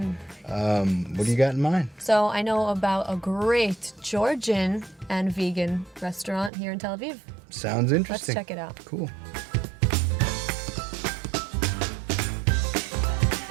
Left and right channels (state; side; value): drops out; left; at 6.5 s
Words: What do you got in mind? So I know about a great Georgian and vegan restaurant here in Tel Aviv. Sounds interesting. Let's check it out. Cool.